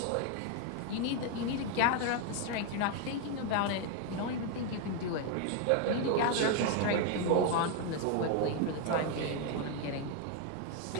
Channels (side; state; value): both; different; correlation 0.01